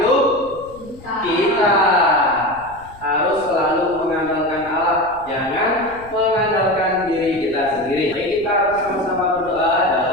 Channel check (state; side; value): noise; left; rumble, 22 dB below the sound